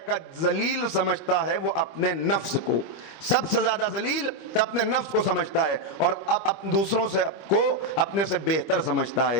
کہ ذلیل سمجھتا ہے وہ اپنے نفس کو، سب سے زیادہ ذلیل تو اپنے نفس کو سمجھتا ہے، اور اب دوسروں سے کو اپنے سے بہتر سمجھتا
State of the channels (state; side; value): late; right; 25 ms